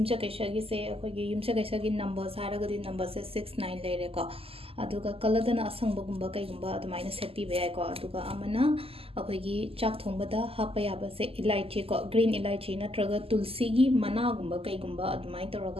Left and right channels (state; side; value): late; left; 0.28 ms